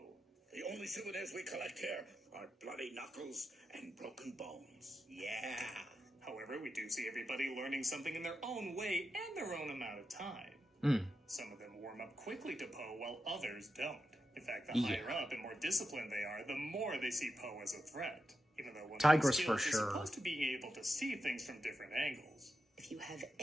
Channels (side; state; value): both; normal; correlation 0.88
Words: The only souvenirs we collect here are bloody knuckles and broken bones. Yeah. However, we do see everybody learning something in their own way and their own amount of time. Some of them warm up quickly to Po while others don't. In fact, the higher up and more disciplined they are, the more they see Po as a threat. Even though one Tigress of for the skills is sure. supposed to being able to see things from different angles. If you have